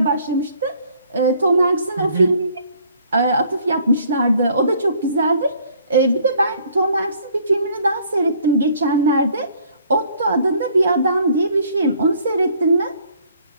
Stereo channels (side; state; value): both; inverted; correlation -0.61